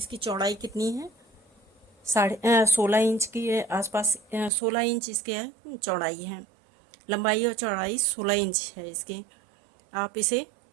चौड़ाई कितनी है, 16 इंच के आसपास, 16 इंच इसके चौड़ाई है। लंबाई और चौड़ाई 16 इंच है इसकी। आप इसे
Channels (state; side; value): drops out; left; at 4.5 s